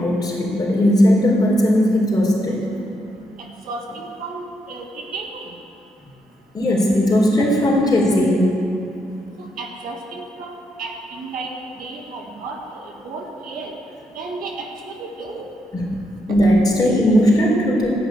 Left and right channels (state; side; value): normal; both; correlation 0.80